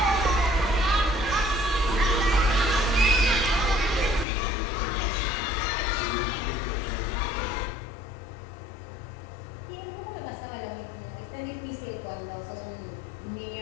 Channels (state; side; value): drops out; right; at 4.2 s